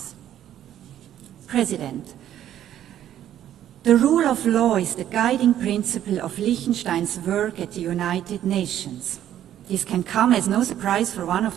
President, the rule of law is the guiding principle of Liechtenstein's work at the United Nations. This can come as no surprise for one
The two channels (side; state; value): left; quieter; 11.3 dB